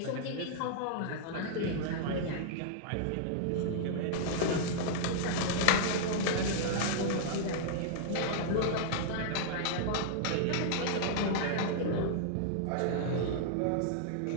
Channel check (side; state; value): both; different; correlation -0.01